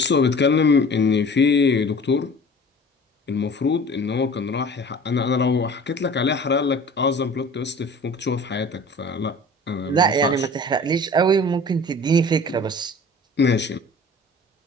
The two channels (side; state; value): both; normal; correlation 0.44